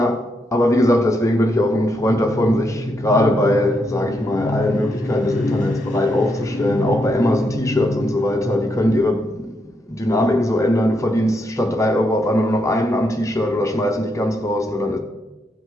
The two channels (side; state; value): both; normal; correlation 0.79